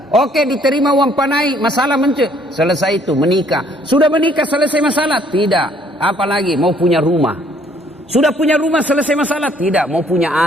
Oke, diterima uang panai, masalah selesai itu, menikah. Sudah menikah, selesai masalah? Tidak. Apalagi mau punya rumah. Sudah punya rumah, selesai masalah? Tidak. Mau punya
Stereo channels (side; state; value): both; normal; correlation 0.62